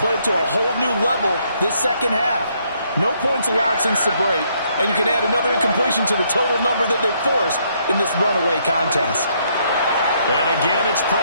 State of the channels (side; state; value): both; inverted; correlation -0.71